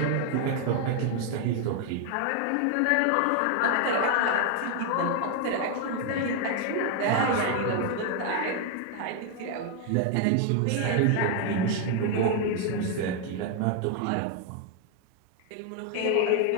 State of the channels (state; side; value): different; both; correlation 0.00